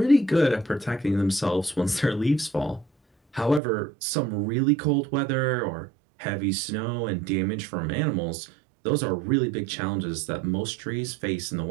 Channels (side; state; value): left; drops out; at 3.6 s